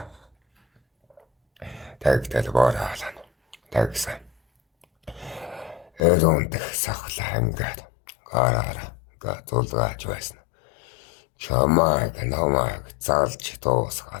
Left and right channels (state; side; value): drops out; right; at 6.0 s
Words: Тэгтэл бороолно. Тэгсэн. Өрөөндөх сахлаа ингээд гараараа зулгааж байсан. Чамайг намайг залж